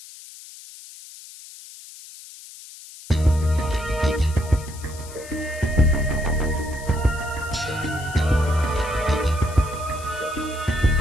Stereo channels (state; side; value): noise; left; hiss, 17 dB below the sound